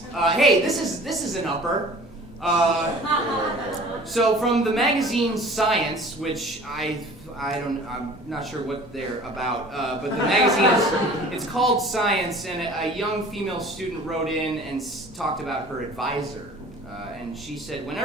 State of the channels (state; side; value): normal; both; correlation 0.46